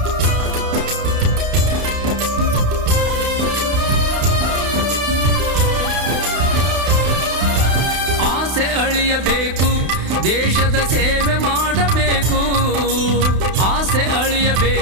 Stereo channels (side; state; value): left; late; 32 ms